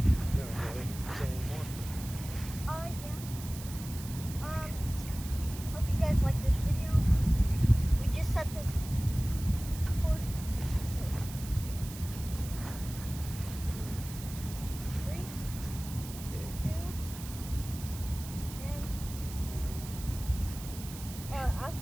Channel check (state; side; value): noise; right; hiss, 13 dB below the sound